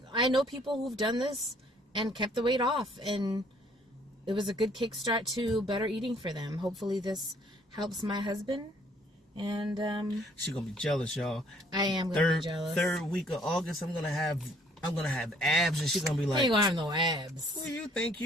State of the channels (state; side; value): normal; both; correlation 0.61